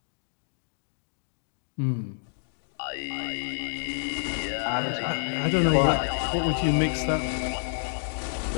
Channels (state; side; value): silent; right; digital silence